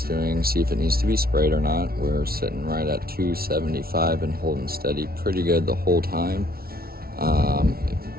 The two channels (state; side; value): late; left; 0.44 ms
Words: doing, see if it needs to be sprayed or not. We're sitting right at 275 and holding steady pretty good the whole time.